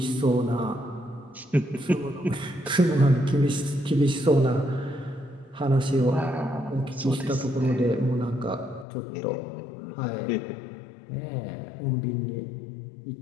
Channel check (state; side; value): drops out; right; at 8.8 s